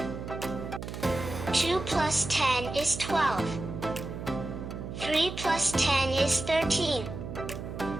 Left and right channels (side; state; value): right; noise; hum, 8 dB below the sound